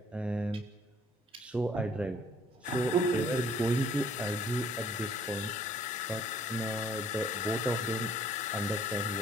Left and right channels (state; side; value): normal; both; correlation 0.59